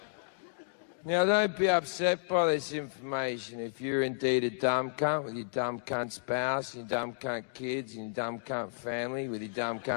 Now, don't be upset by this information if you're indeed a dumb cunt with your dumb cunt spouse, your dumb cunt kids, and your dumb cunt family with your dumb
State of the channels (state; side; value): silent; right; digital silence